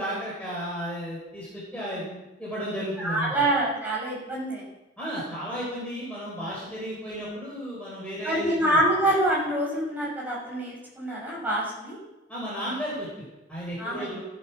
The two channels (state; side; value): normal; both; correlation 0.32